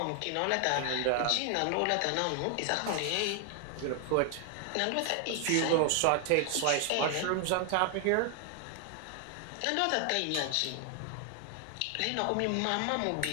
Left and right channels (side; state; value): both; different; correlation 0.00